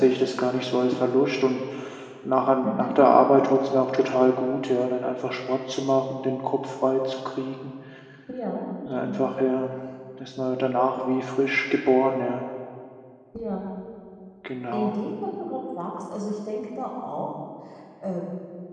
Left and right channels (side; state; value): both; identical; correlation 1.00